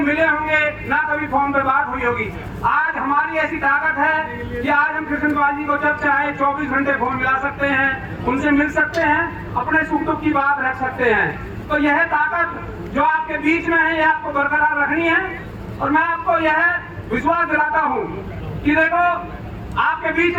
होंगे, ना कभी फोन पे बात हुई होगी। आज हमारी ऐसी ताकत है कि आज हम कृष्णपाल जी को जब चाहे 24 घंटे फोन मिला सकते हैं, उनसे मिल सकते हैं, अपने सुख दुख की बात रख सकते हैं। तो यह ताकत जो आपके बीच में है, यह आपको बरकरार रखनी है। और मैं आपको यह विश्वास दिलाता हूँ कि देखो, आपके बीच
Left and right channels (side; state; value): both; identical; correlation 1.00